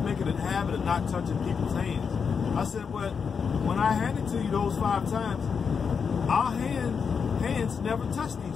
make it a habit of not touching people's hands. I said, but when I handed to you those 5 times, our hands never touched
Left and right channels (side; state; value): right; quieter; 6.1 dB